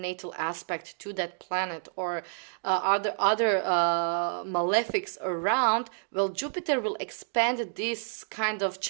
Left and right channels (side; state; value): left; silent; digital silence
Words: aspect to that planet or other malefics around, well, Jupiter will expand this kind of